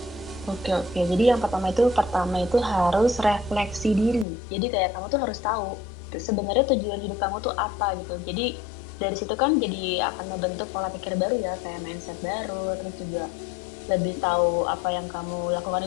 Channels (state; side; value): drops out; right; at 4.2 s